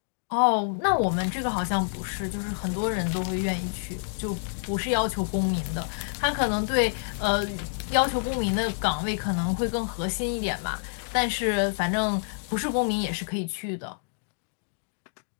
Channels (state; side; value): silent; right; digital silence